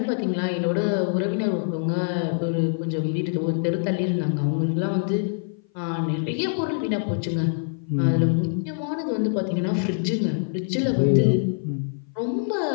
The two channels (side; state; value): right; silent; 57 dB below the other